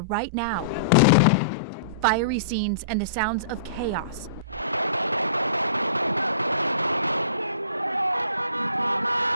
right now. Fiery scenes and the sounds of chaos.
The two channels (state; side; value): inverted; both; correlation -0.42